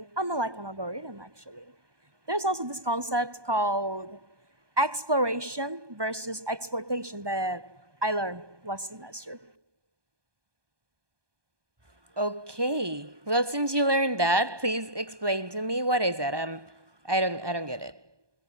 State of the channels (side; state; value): left; late; 1.2 ms